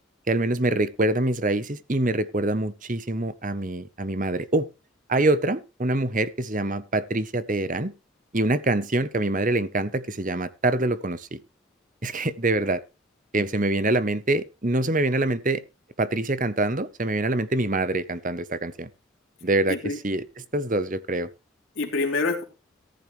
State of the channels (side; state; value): both; normal; correlation 0.41